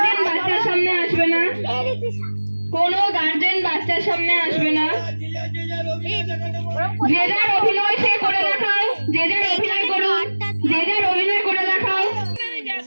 বাচ্চার সামনে আসবে না, কোনো গার্জেন বাচ্চার সামনে আসবে না। যে যার অভিনয় সে করে দেখাও, যে যার অভিনয় করো, যে যার অভিনয় করে দেখাও।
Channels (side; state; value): both; inverted; correlation -1.00